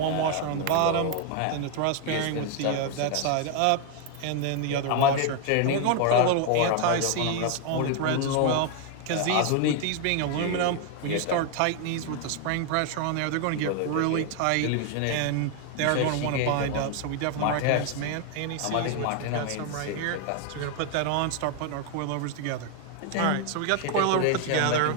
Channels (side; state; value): both; different; correlation 0.01